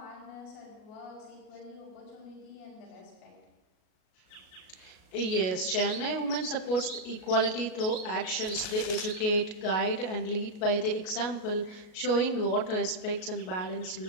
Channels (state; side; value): late; right; 37 ms